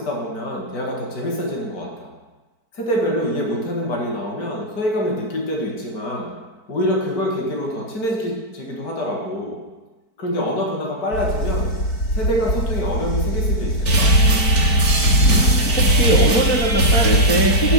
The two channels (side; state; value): right; late; 4.5 ms